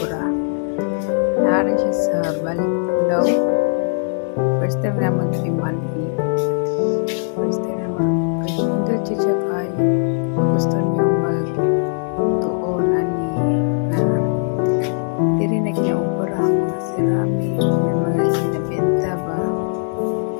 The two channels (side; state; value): right; silent; digital silence